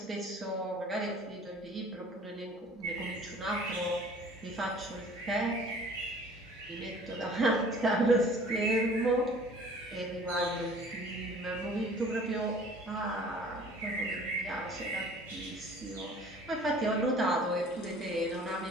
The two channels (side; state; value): both; normal; correlation 0.50